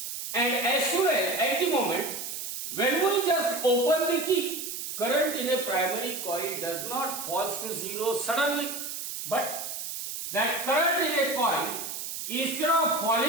And as soon as at the moment when we just open the key, current in a primary coil does not fall to zero suddenly, but that current in a coil, instead of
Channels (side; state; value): right; noise; hiss, 6 dB below the sound